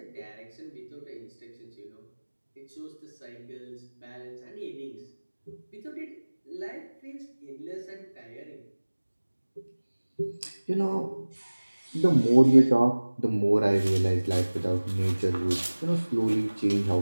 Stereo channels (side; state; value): both; inverted; correlation -1.00